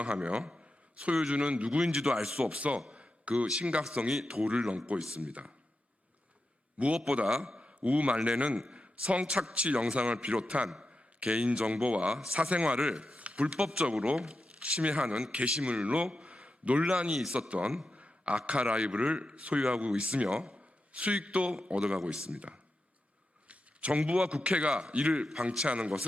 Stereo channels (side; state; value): both; normal; correlation 0.89